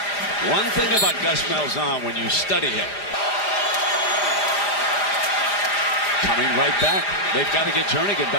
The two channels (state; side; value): late; right; 5.0 ms